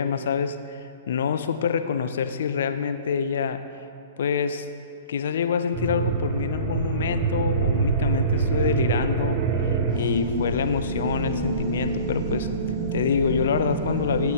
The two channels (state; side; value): inverted; both; correlation -0.45